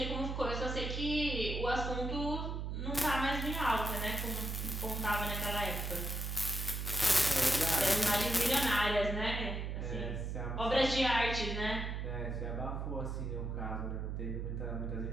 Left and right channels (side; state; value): right; noise; hum, 3 dB below the sound